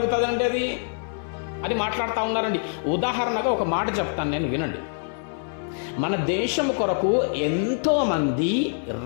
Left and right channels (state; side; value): silent; right; 58 dB below the other